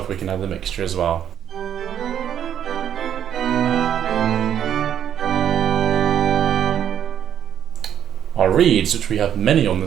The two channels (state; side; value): quieter; left; 9.6 dB